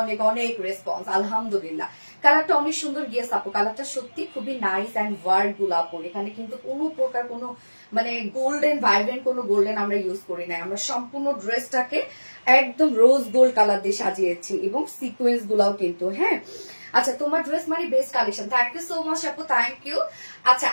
অনেক অনেক রেসপন্স, আলহামদুলিল্লাহ। কালারটা অনেক সুন্দর, গিয়েস আপু কালারটা সত্যি খুবই নাইস অ্যান্ড ওয়ার্ড গোলাপ, এখানে কিন্তু কোনো প্রকার কোনো মানে গোল্ডেন ভাইব্রেন্ট কোনো গোল্ডেন আমরা ইউজ করি না, আমরা সম্পূর্ণ ড্রেসটাকে একদম রোজ গোল্ড কালার দিয়ে সাজিয়েছি, এবং সিকোয়েন্স গুলাও কিন্তু। হ্যাঁ, আচ্ছা তোমার ড্রেস মানে best collection, thank you so much আপু, থ্যাংক ইউ। আচ্ছা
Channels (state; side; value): inverted; both; correlation -1.00